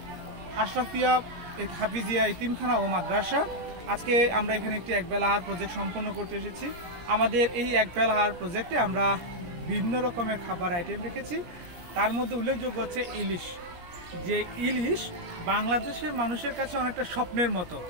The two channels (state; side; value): late; left; 17 ms